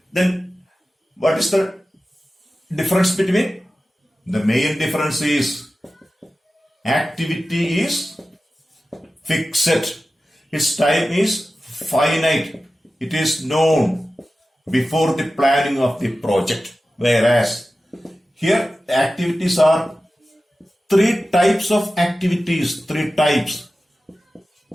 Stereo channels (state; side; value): normal; both; correlation 0.94